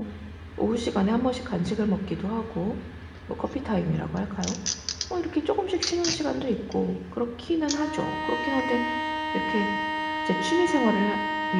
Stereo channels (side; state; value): both; identical; correlation 1.00